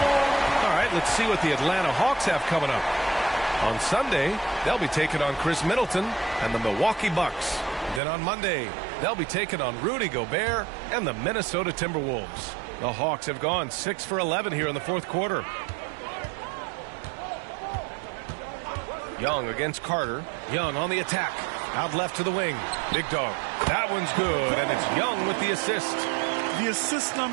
All right, let's see what the Atlanta Hawks have coming up. On Sunday, they'll be taking on Chris Middleton and the Milwaukee Bucks. Then on Monday, they'll be taking on Rudy Gobert and the Minnesota Timberwolves. The Hawks have gone 6 for 11 here in the 4th quarter. Young against Carter. Young on the attack. Out left to the wing. Big Dog. That one's good, and it's Young with the assist. The assist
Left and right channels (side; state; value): left; drops out; at 8.0 s